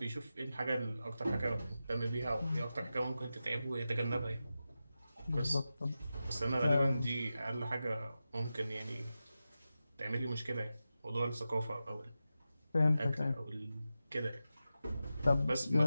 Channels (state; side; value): inverted; both; correlation -0.92